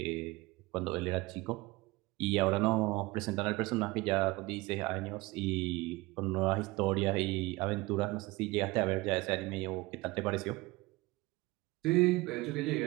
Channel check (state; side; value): quieter; left; 22.0 dB